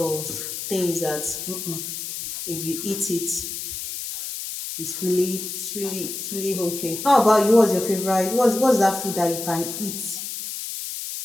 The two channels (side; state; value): left; noise; hiss, 6 dB below the sound